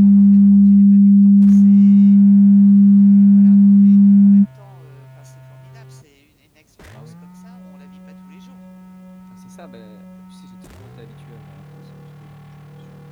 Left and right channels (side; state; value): both; identical; correlation 1.00